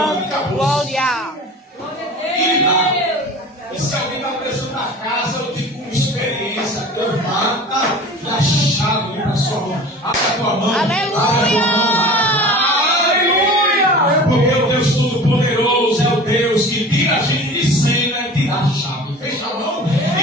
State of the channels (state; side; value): normal; both; correlation 0.39